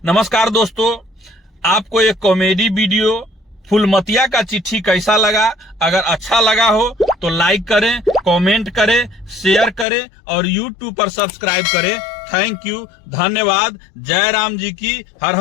नमस्कार दोस्तों, आपको एक कॉमेडी वीडियो फूलमतिया का चिट्ठी कैसा लगा? अगर अच्छा लगा हो तो लाइक करें, कमेंट करें, शेयर करें और YouTube पर सब्सक्राइब करें। थैंक यू, धन्यवाद। जय राम जी की, हर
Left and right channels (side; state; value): right; drops out; at 9.9 s